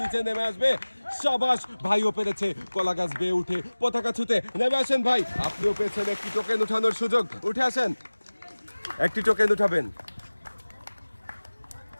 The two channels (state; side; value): inverted; both; correlation -1.00